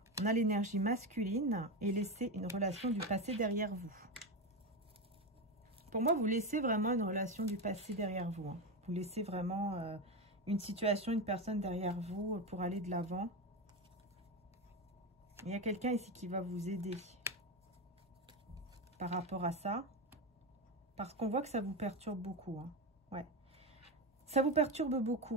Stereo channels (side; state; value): both; normal; correlation 0.15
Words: On a l'énergie masculine et laisser une relation du passé derrière vous. Pour moi, vous laissez vraiment une relation du passé derrière vous. Hein. Vous laissez vraiment une situation, une personne derrière vous pour aller de l'avant. Il y a quelqu'un ici qui va vous aider par rapport à ça. Parce qu'on voit que ça vous perturbe beaucoup. Hein. Ouais. Ça vous perturbe